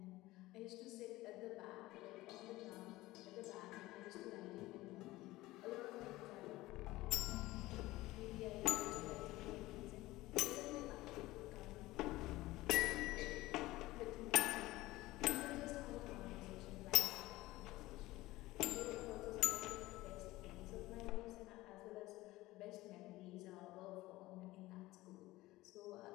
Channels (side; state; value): right; quieter; 18.3 dB